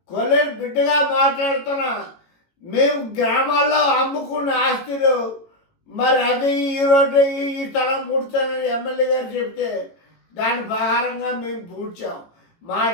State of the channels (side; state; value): right; late; 18 ms